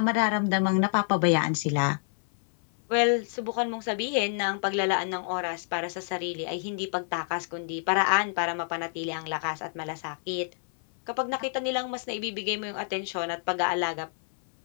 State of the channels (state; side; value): silent; right; 59 dB below the other